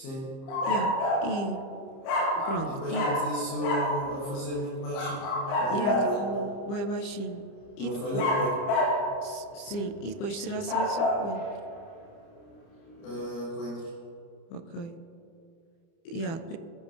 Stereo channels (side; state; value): right; late; 30 ms